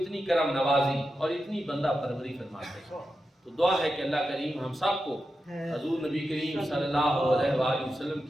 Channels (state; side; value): normal; both; correlation 0.90